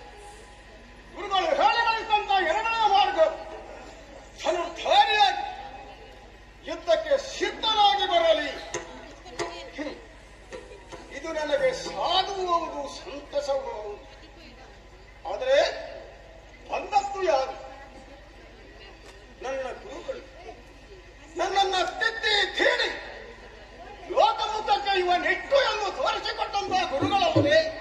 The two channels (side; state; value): both; identical; correlation 1.00